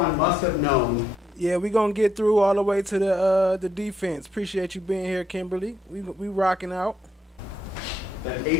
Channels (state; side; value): normal; both; correlation 0.74